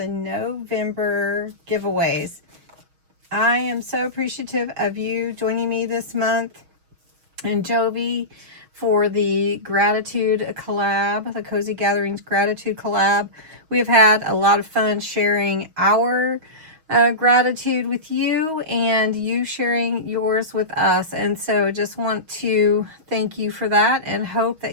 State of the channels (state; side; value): late; left; 6.3 ms